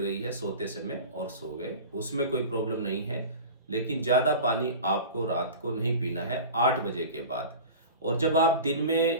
है सोते समय और सो गए, उसमें कोई प्रॉब्लम नहीं है। लेकिन ज़्यादा पानी आपको रात को नहीं पीना है 8 बजे के बाद। और जब आप दिन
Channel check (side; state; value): both; inverted; correlation -0.34